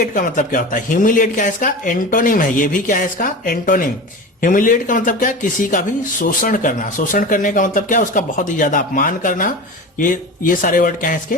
का मतलब क्या होता है? ह्यूमिलिएट क्या है? इसका एंटोनिम है। ये भी क्या है? इसका एंटोनिम। ह्यूमिलिएट का मतलब क्या? किसी का भी शोषण करना। शोषण करने का मतलब क्या? उसका बहुत ही ज्यादा अपमान करना। ये सारे वर्ड क्या है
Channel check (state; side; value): normal; both; correlation 0.30